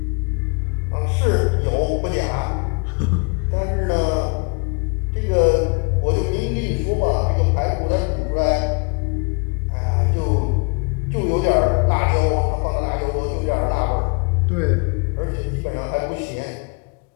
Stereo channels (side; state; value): right; quieter; 33.5 dB